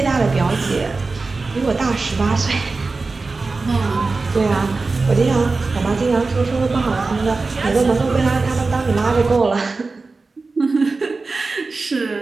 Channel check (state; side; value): quieter; left; 3.8 dB